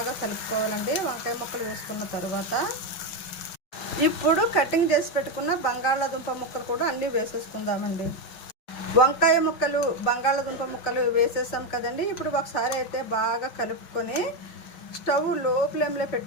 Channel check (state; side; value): late; right; 5.7 ms